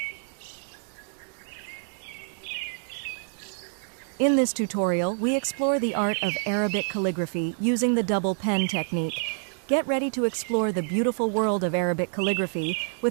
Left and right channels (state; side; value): silent; left; digital silence